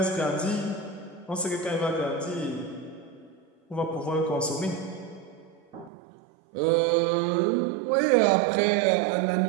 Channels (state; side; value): drops out; left; at 5.9 s